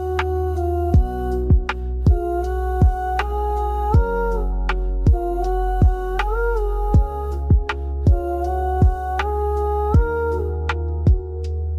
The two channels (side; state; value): both; identical; correlation 1.00